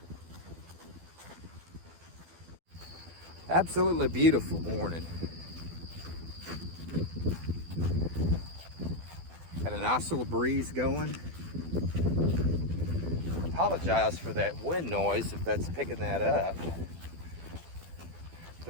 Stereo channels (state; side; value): late; left; 12 ms